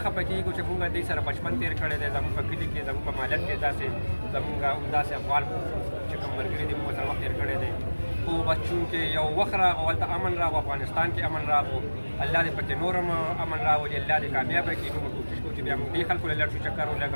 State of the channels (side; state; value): both; inverted; correlation -1.00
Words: خفه کېږو چې موږ دوی سره بچپن تېر کړی دی. زموږ په کلي کې زموږ په مالت کې داسې زموږ همداسې افغان چې کوم ملګري دي موږ سره وخت تېر کړی دی. خو بس چونکې یو وخت راغو هلته امن راغو افغانستان کې امن راغو الله دې پکې نور هم امن راولي الله دې کامیابه کړي. نو موږ کوشش کوو چې بیا موږ دې خلکو له لږ شو چکر